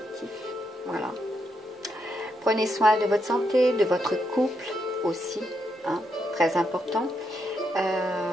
Voilà. Prenez soin de votre santé, de votre couple aussi, très important.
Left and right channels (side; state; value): both; normal; correlation 0.80